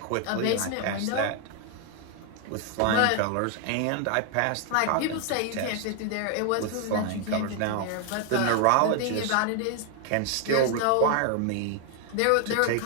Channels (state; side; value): different; both; correlation 0.00